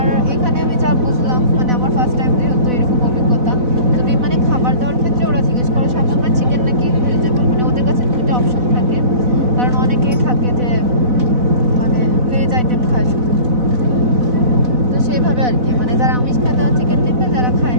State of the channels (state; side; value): late; left; 4.0 ms